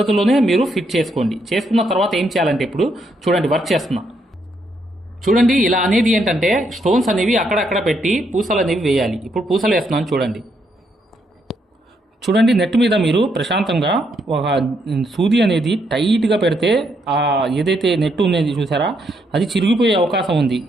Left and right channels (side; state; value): both; normal; correlation 0.76